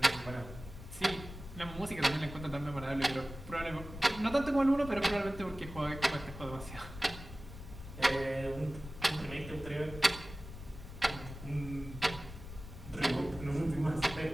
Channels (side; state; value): left; noise; rumble, 12 dB below the sound